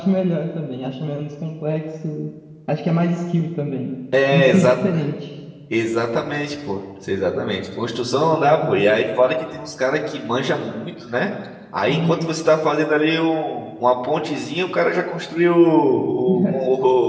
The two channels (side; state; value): both; identical; correlation 1.00